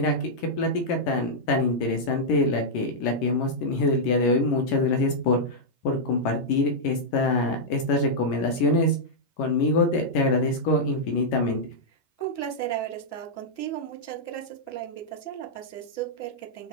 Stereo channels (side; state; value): right; late; 11 ms